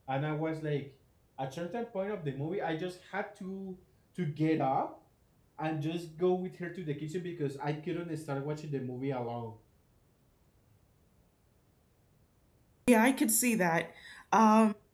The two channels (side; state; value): both; identical; correlation 1.00